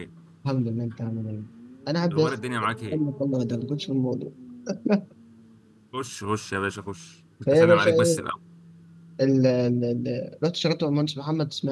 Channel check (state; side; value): identical; both; correlation 1.00